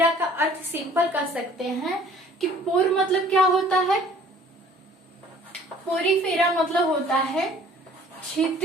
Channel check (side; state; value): both; normal; correlation 0.53